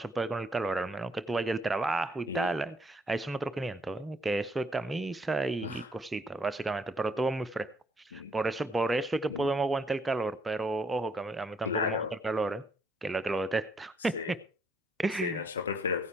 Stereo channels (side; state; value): both; normal; correlation 0.69